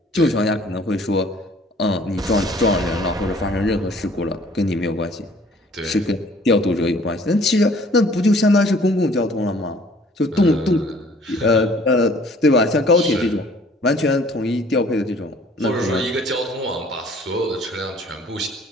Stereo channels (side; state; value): both; normal; correlation 0.55